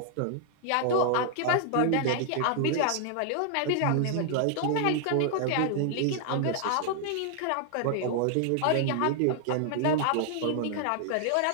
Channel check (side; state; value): both; different; correlation 0.00